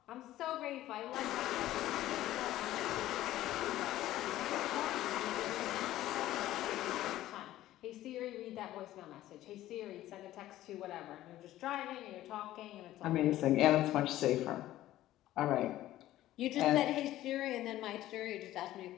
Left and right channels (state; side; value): quieter; right; 14.5 dB